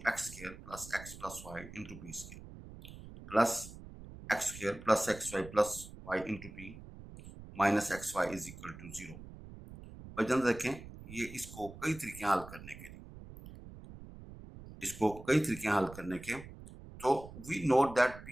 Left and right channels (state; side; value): noise; right; rumble, 15 dB below the sound